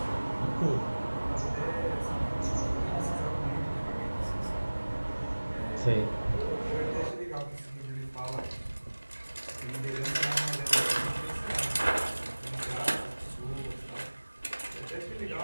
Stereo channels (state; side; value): inverted; both; correlation -1.00